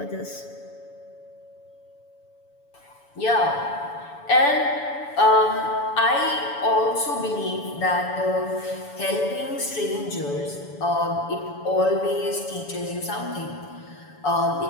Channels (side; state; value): right; late; 7.0 ms